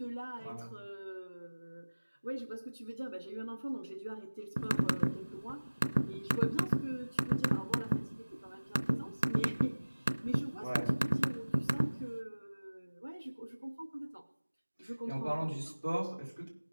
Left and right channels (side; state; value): both; inverted; correlation -1.00